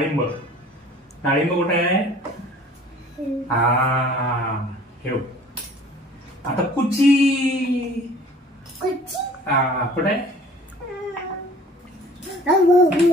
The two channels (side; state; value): both; normal; correlation 0.50